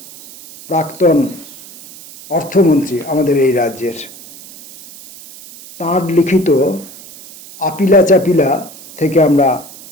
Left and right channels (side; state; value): right; noise; hiss, 18 dB below the sound